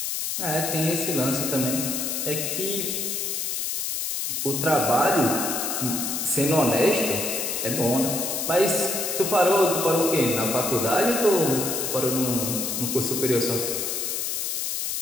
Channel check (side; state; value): left; noise; hiss, 2 dB below the sound